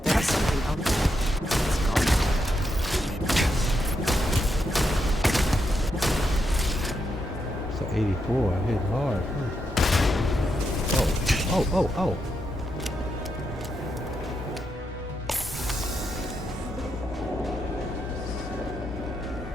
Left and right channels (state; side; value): normal; both; correlation 0.82